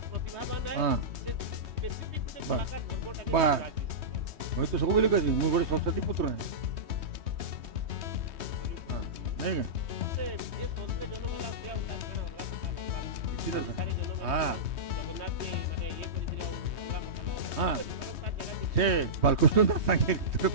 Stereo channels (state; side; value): late; left; 3.2 ms